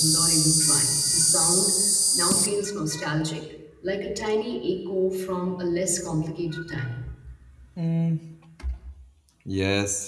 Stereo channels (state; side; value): identical; both; correlation 1.00